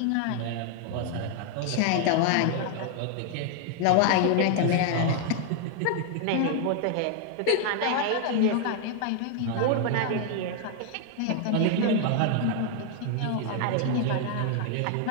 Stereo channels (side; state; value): both; different; correlation 0.00